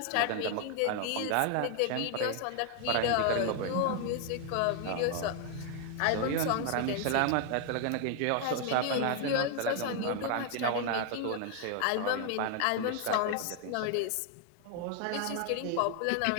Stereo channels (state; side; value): different; both; correlation 0.00